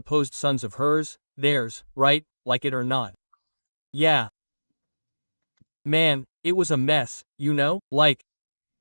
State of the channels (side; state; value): both; inverted; correlation -1.00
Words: sons of hers, theirs, right, like it or not. Yeah. Man, it was a mess, you know? Like,